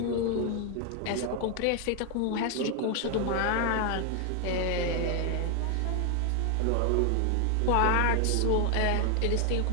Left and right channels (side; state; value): both; different; correlation 0.00